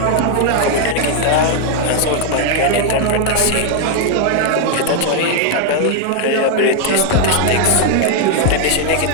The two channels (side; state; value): both; different; correlation 0.00